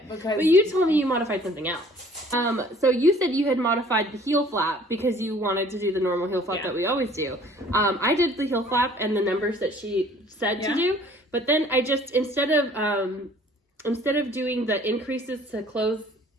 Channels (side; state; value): both; normal; correlation 0.54